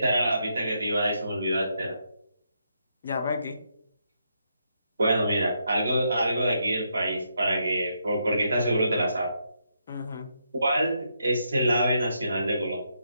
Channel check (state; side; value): inverted; both; correlation -0.79